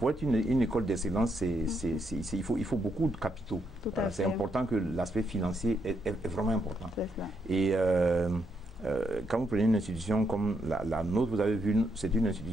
être une école d'excellence, il faut beaucoup de capitaux. C'est important que l'aspect financier est vraiment important. Et quand vous prenez une institution comme la nôtre, vous avez vu, c'est une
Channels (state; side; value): normal; both; correlation 0.78